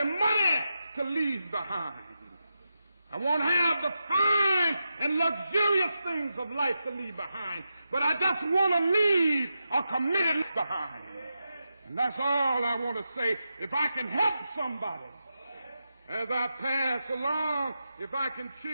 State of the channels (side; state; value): both; inverted; correlation -0.88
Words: money to leave behind. I won't have the fine and luxurious things of life to leave behind. But I just want to leave a committed life behind. And that's all I want to say. If I can help somebody as I pass along, if I can